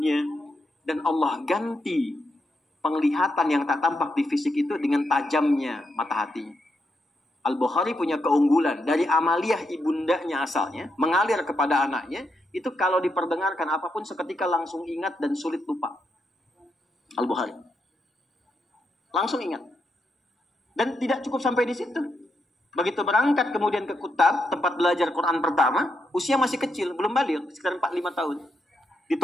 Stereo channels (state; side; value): normal; both; correlation 0.82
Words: dan Allah ganti penglihatan yang tak tampak di fisik itu dengan tajamnya mata hati. Al-Bukhari punya keunggulan. Dari amaliyah ibundanya asalnya, mengalir kepada anaknya, itu kalau diperdengarkan apapun seketika langsung ingat dan sulit lupa. Al-Bukhari. Langsung ingat. Dan tidak cukup sampai di situ. Begitu berangkat kemudian ke Kutab, tempat belajar Quran pertama, usia masih kecil, belum balik, sekitar 4-5 tahun.